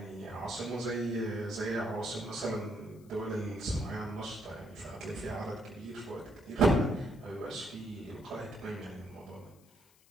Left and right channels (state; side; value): noise; left; hiss, 28 dB below the sound